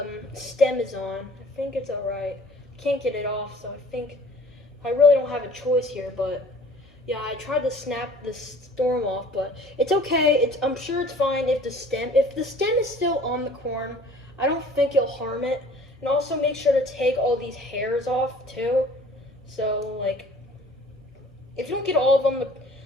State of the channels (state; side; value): normal; both; correlation 0.50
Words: stem is on. I think it's alright. Can't get it off, so I think I really don't have a choice here, but yeah, I tried to snap the storm off, but it's okay. I'm sure it's fine if the stem is still on the corn, I don't think it'll harm it. And also make sure to take all these hairs off too. So like, if you don't get all of them,